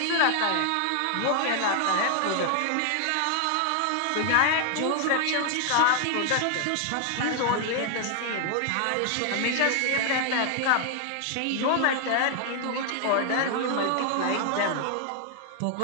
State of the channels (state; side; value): different; both; correlation 0.00